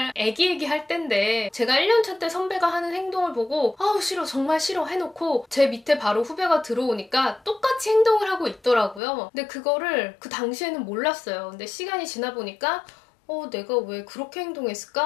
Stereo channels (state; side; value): drops out; right; at 9.0 s